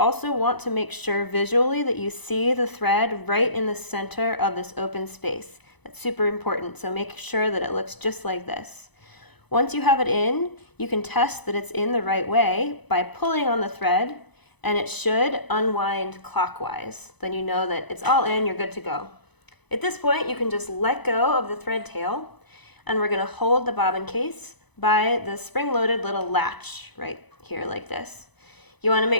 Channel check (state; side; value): late; right; 0.99 ms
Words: want to make sure visually that you see the thread right in the center of this open space. That's super important, so make sure that it looks just like this. Once you have it in, you can test that it's in the right way by pulling on the thread, and it should unwind clockwise. Then you know that it's all in, you're good to go. At this point, you can just let go of the thread tail, and we're going to hold the bobbin case by the spring-loaded little latch right here like this. You want to